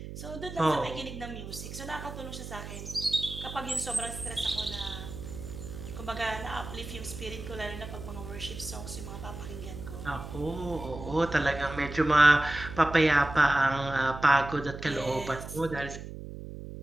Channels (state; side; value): noise; right; hum, 10 dB below the sound